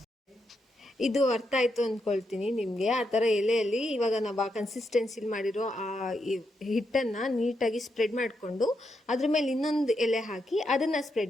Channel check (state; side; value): normal; both; correlation 0.82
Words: ಇದು ಅರ್ಥ ಆಯಿತು ಅಂದ್ಕೊಳ್ತೀನಿ ನಿಮಗೆ. ಆ ಥರ ಎಲೆಯಲ್ಲಿ ಇವಾಗ ನಾವು ಆ ಕನ್ಸಿಸ್ಟೆನ್ಸಿಲಿ ಮಾಡಿರೋ ಆ ಹಿಟ್ಟನ್ನು ನೀಟಾಗಿ ಸ್ಪ್ರೆಡ್ ಮಾಡಿಕೊಂಡು ಅದ್ರ ಮೇಲೆ ಇನ್ನೊಂದು ಎಲೆ ಹಾಕಿ ಅದನ್ನು